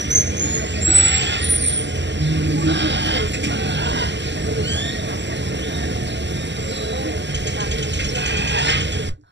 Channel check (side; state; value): left; late; 0.52 ms